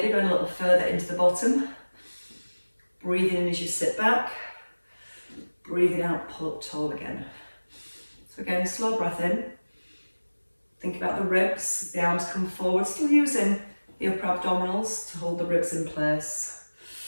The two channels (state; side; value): inverted; both; correlation -1.00